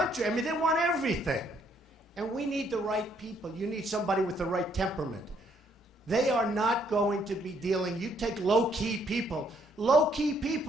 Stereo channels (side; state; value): both; normal; correlation 0.69